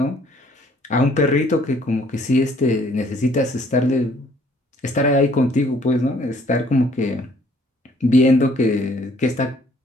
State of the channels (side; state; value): both; normal; correlation 0.61